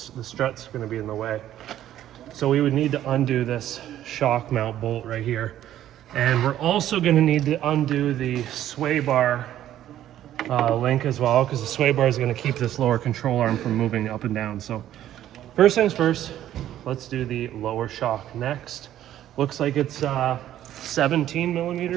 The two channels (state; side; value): quieter; left; 12.2 dB